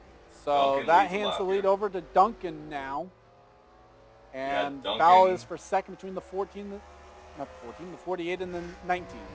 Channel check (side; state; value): both; identical; correlation 1.00